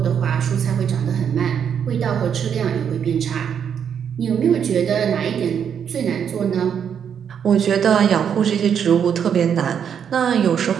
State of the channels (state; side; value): quieter; left; 8.0 dB